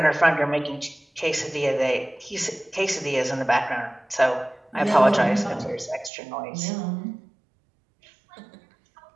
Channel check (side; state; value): left; drops out; at 6.1 s